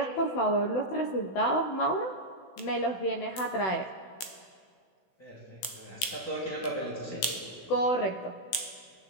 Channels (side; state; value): right; late; 16 ms